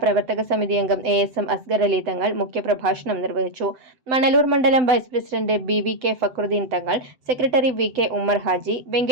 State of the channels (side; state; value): left; late; 7.9 ms